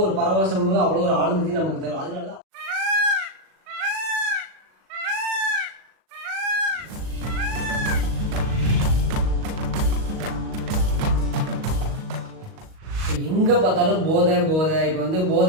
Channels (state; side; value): late; left; 38 ms